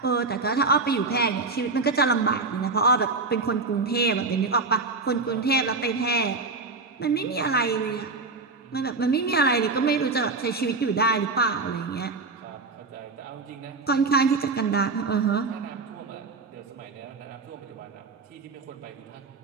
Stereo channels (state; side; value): quieter; left; 3.9 dB